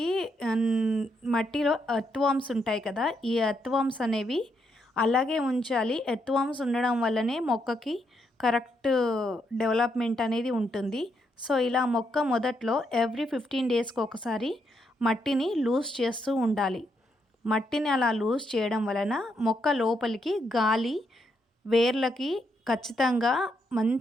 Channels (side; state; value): both; normal; correlation 0.78